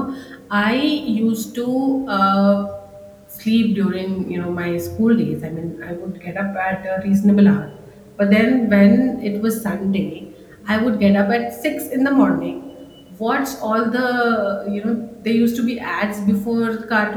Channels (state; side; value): identical; both; correlation 1.00